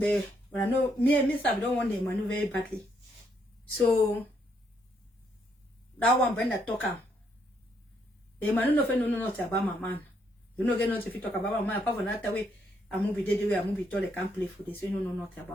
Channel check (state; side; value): normal; both; correlation 0.74